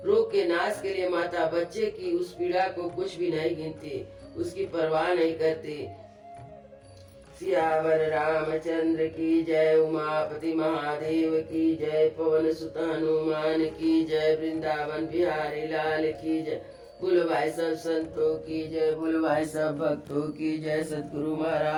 रोग के नाश के लिए माता बच्चे की उस पीड़ा को कुछ भी नहीं गिनती, उसकी परवाह नहीं करती। सियावर रामचंद्र की जय, उमापति महादेव की जय, पवन सुत हनुमान की जय, वृंदावन बिहारी लाल की जय। बोलो भाई सब संतों की जय, बोलो भाई सब भक्तों की जय, सतगुरु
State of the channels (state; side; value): identical; both; correlation 1.00